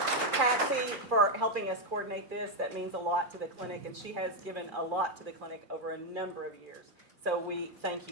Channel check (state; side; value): late; left; 2.4 ms